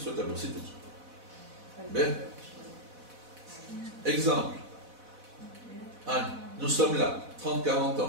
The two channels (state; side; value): late; left; 4.1 ms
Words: tableau, c'est tout. Bien. Exemple. Nous sommes là, 30-40